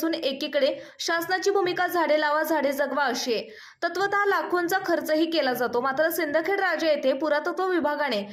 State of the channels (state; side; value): identical; both; correlation 1.00